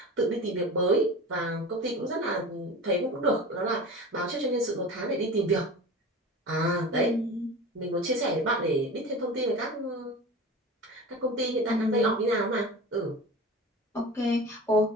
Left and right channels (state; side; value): normal; both; correlation 0.34